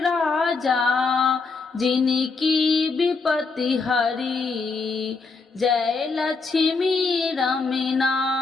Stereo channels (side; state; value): right; quieter; 4.3 dB